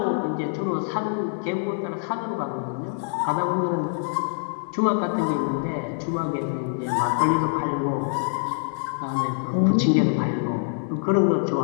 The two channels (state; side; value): silent; right; digital silence